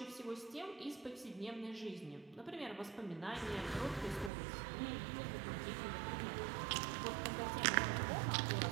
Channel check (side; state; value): left; drops out; at 4.3 s